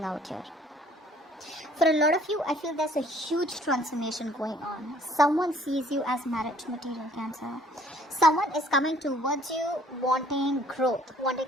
out here. For a lot of you, I feel there's a huge transformation going on. Someone sees you as marriage material, Cancer. Someone is coming towards you wanting growth,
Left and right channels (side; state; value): both; normal; correlation 0.58